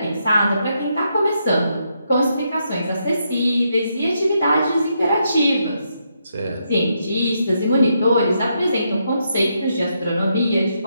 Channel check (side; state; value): both; inverted; correlation -0.79